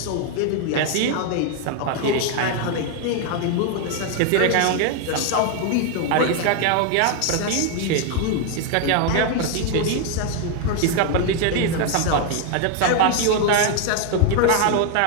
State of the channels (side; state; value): both; different; correlation 0.00